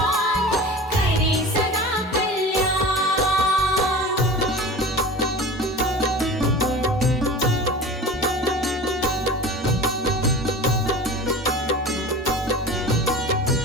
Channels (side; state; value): both; normal; correlation 0.36